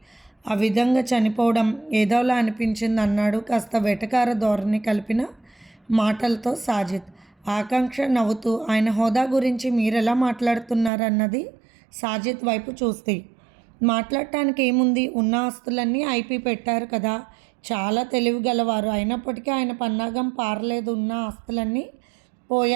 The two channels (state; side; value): drops out; left; at 10.9 s